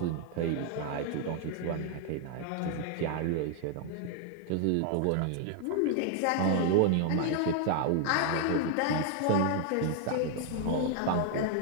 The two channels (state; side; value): different; both; correlation 0.00